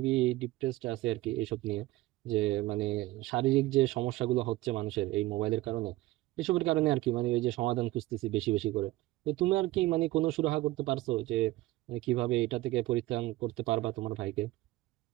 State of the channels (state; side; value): quieter; left; 18.1 dB